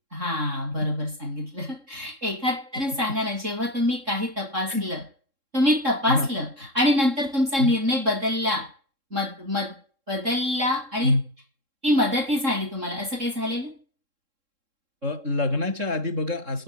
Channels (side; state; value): left; late; 3.7 ms